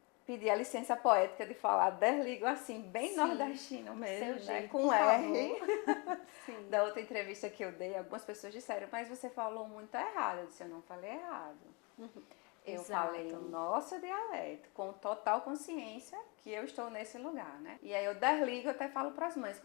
pedir a licença poética de falar desligo assim, bem nordestino mesmo, né? Com R. Da outra entrevista que eu dei, algumas pessoas disseram, mas você falou muito errado. Eu disse, eu não falei errado. Eu falei o nosso dialeto, com total consciência que eu estou nesse lugar, né? E aí eu desligo, eu até falo para as mães,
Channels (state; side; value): quieter; right; 30.1 dB